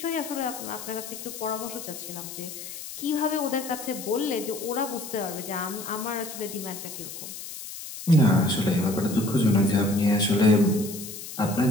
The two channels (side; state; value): left; noise; hiss, 11 dB below the sound